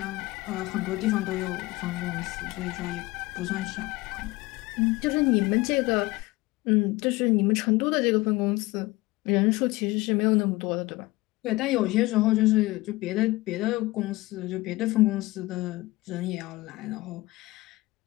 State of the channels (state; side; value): quieter; right; 20.5 dB